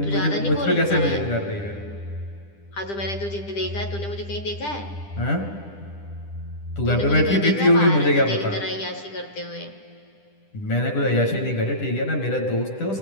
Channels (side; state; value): right; late; 10 ms